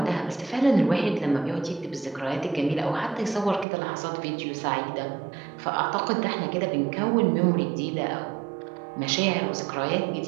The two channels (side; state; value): left; drops out; at 3.7 s